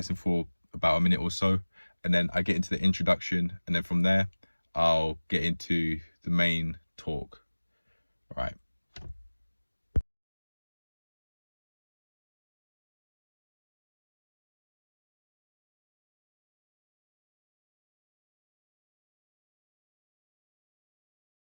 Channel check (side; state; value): both; inverted; correlation -1.00